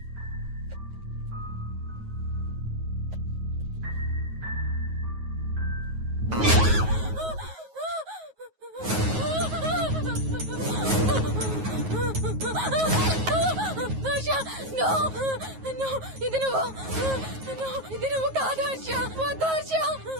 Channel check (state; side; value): late; left; 9.4 ms